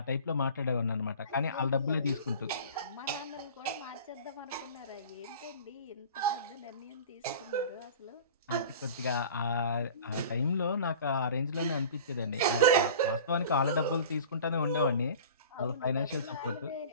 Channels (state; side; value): inverted; both; correlation -0.40